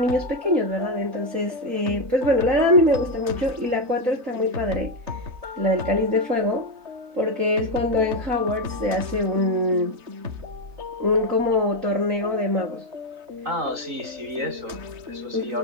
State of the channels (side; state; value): left; late; 3.9 ms